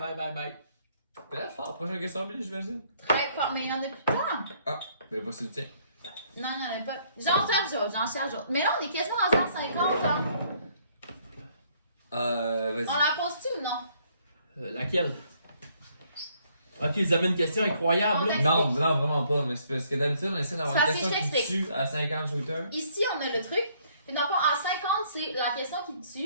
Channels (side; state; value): both; inverted; correlation -0.66